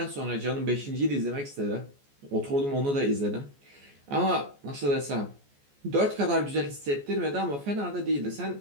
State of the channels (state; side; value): late; left; 14 ms